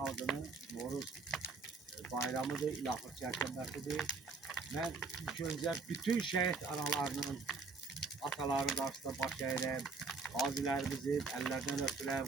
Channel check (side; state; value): left; quieter; 4.2 dB